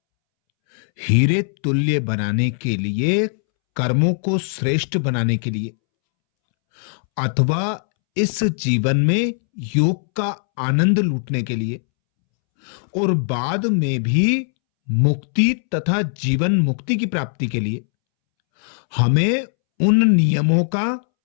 हीरे तुल्य बनाने के लिए, कर्मों को श्रेष्ठ बनाने के लिए, अथवा इस जीवन में योग का आनंद लूटने के लिए और बाद में भी मुक्ति तथा जीवन मुक्ति की प्राप्ति के लिए हमें उन नियमों का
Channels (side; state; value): right; silent; 66 dB below the other